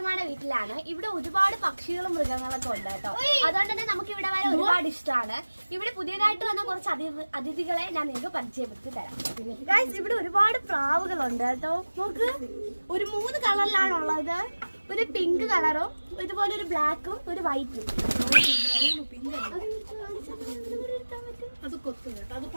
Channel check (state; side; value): inverted; both; correlation -1.00